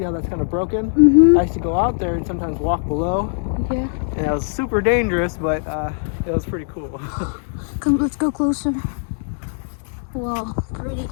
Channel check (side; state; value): right; silent; 65 dB below the other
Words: how that's kind of broken. I used to go out there and sometimes walk below. Yeah. And it was super dangerous, but it was pretty cool. Come, let's go closer. Wow, pretty.